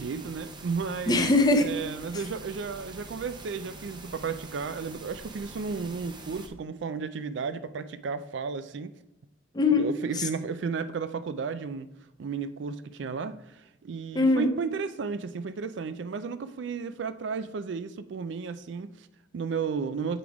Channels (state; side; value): normal; both; correlation 0.29